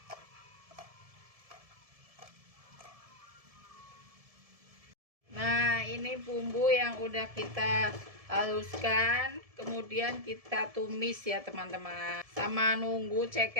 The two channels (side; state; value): left; late; 1.7 ms